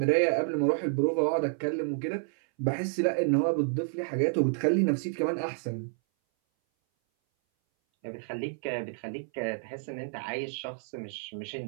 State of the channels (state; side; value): silent; left; 58 dB below the other